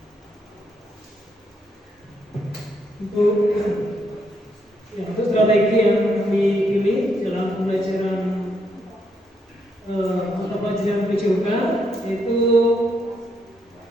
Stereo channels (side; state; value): both; normal; correlation 0.77